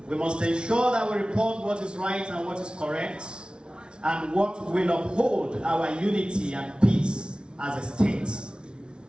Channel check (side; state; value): left; late; 0.056 ms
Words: We must ensure that we report what is right and what is correct, and what will uphold our unity and peace as a state.